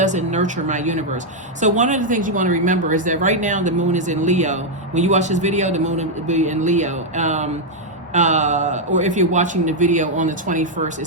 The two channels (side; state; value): both; normal; correlation -0.01